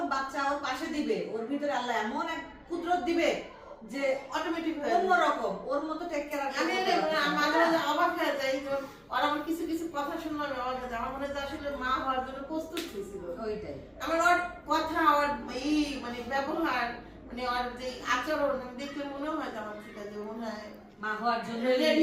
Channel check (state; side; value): identical; both; correlation 1.00